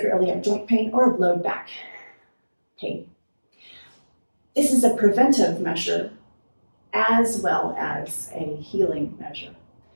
joint pain, or low back pain. This is a preventive measure as well as a healing measure.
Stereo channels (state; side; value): inverted; both; correlation -1.00